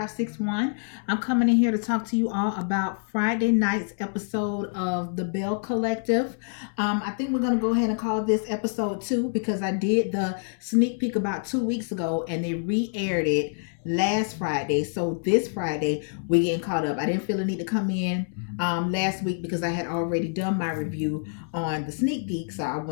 I'm coming in here to talk to you all about Friday night's episode of the Belle Collective. I think we're going to go ahead and call this episode 2 because I did the sneak peek about 2 weeks ago and they re-aired it last Friday. So this Friday, we're getting caught up. I didn't feel the need to come in last week because I had already done my review on the sneak peek, so I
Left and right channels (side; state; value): right; silent; 61 dB below the other